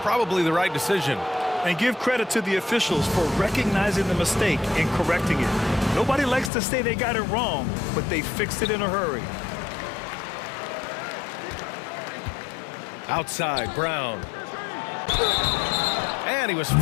Probably the right decision. And give credit to the officials for recognizing the mistake and correcting it. Nobody likes to say they got it wrong, but they fixed it in a hurry. Outside, Brown. And he was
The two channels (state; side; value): drops out; right; at 6.5 s